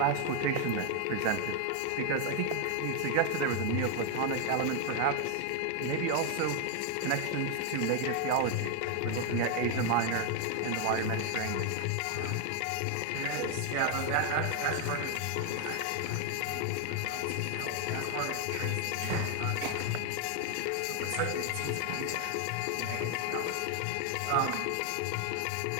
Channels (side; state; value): both; different; correlation 0.00